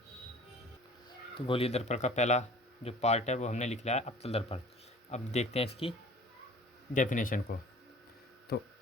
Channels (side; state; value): both; normal; correlation 0.47